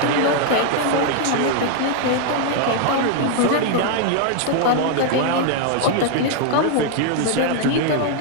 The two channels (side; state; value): both; different; correlation 0.00